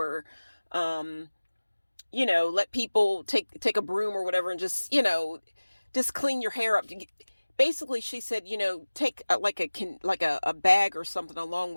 let people take a broom or whatever and just clean your hair up. Basically, she said, take a bag or something along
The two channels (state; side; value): inverted; both; correlation -1.00